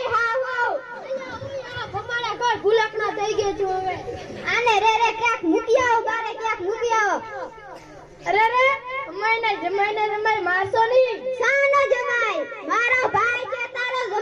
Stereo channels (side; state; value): both; identical; correlation 1.00